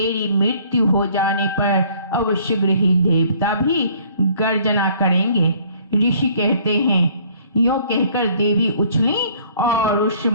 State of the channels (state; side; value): inverted; both; correlation -0.58